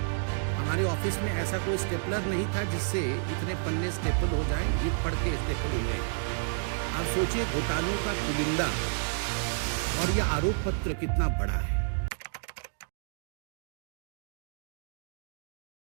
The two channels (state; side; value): silent; left; digital silence